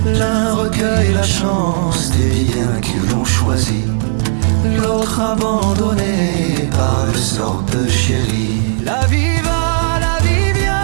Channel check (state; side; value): silent; left; digital silence